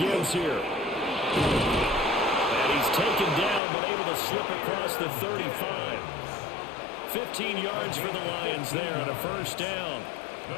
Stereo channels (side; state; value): right; drops out; at 3.6 s